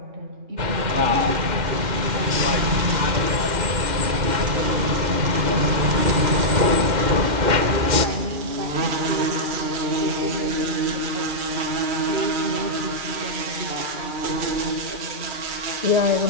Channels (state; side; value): late; left; 2.1 ms